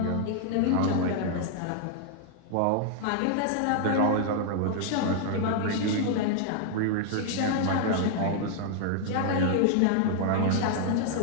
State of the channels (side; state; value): both; different; correlation -0.01